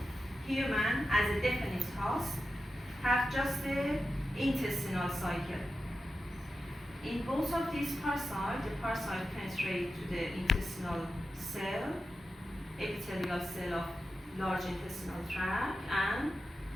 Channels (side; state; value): both; normal; correlation 0.91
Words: human as a definite host have just the intestinal cycle. In both of these parasites, the parasite penetrate to the intestinal cell, epithelial cell of large intestinal tract, and